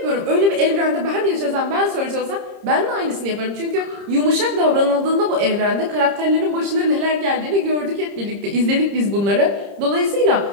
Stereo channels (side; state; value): left; late; 30 ms